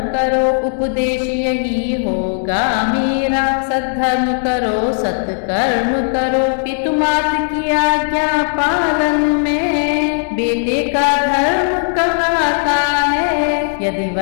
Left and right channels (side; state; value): right; silent; digital silence